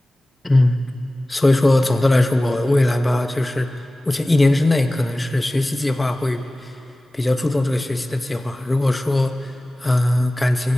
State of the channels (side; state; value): both; normal; correlation 0.97